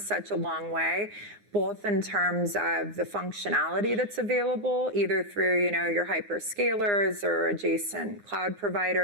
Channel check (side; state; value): left; late; 9.8 ms